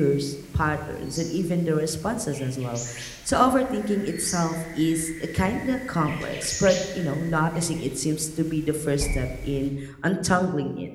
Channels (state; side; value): identical; both; correlation 1.00